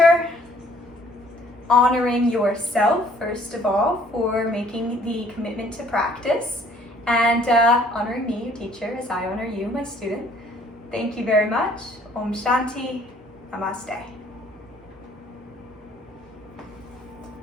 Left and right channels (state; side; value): normal; both; correlation 0.59